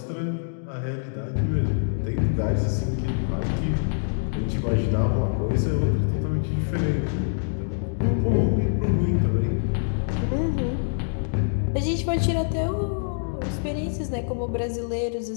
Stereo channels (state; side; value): silent; right; digital silence